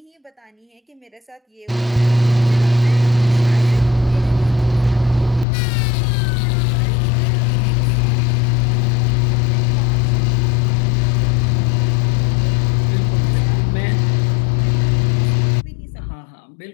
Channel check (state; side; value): drops out; right; at 5.5 s